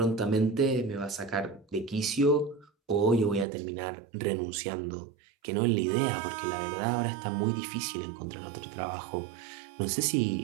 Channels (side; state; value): left; drops out; at 3.5 s